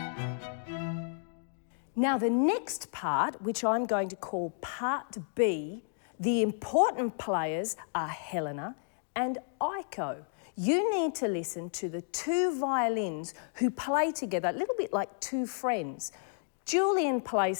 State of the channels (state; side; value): silent; right; digital silence